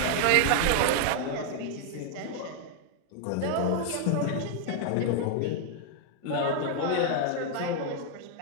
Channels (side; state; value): both; different; correlation 0.00